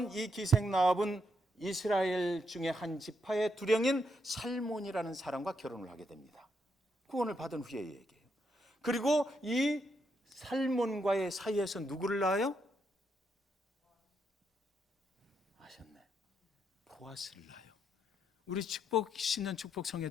이 기생 라합은 이스라엘 중에 한 지파의 두령인 살몬이라는 사람과 결혼을 하게 됩니다. 구원을 받은 후의 얘기예요. 그리고 이 살몬과의 사이에서 누구를 낳아요? 아셨네. 보아스를 낳아요. 우리 축복 신년 축복 성회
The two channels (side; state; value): both; normal; correlation 0.79